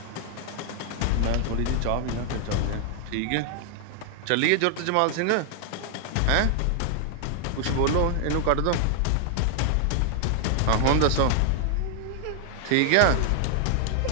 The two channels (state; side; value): different; both; correlation 0.00